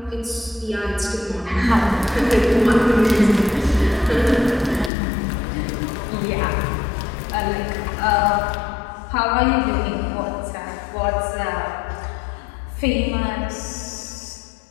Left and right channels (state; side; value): drops out; right; at 4.9 s